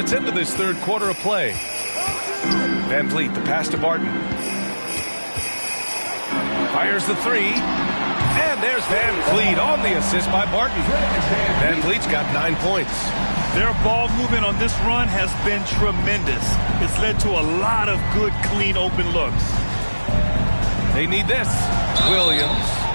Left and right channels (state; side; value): inverted; both; correlation -1.00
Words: into this 3rd quarter of play. Van Vliet, the pass to Barton. Fires the 3. And there's Van Vliet on the assist by Barton. Van Vliet's got 9 points. Their ball movement on this run has been tremendous. It's led to a lot of good, clean, open looks. They need this. Williams.